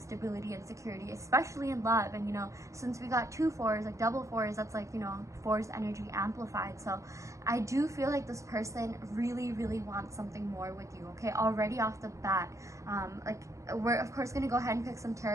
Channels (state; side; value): late; left; 0.15 ms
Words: stability and security, especially in love. And you know, since we got 2 4s, like double 4s, that's like, you know, 4's energy amplified. So I do feel like this person really wants something more with you. Okay, already off the bat, like, we're of course going to go ahead and pick some